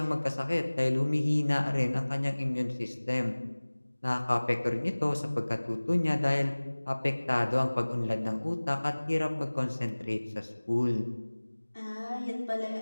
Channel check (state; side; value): inverted; both; correlation -1.00